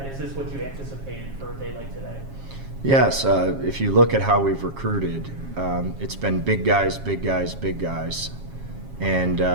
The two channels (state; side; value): late; left; 7.3 ms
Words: what you anticipated for a day like today? Yes, if you look at how we've recruited, it's been big guys, big guys, big guys. And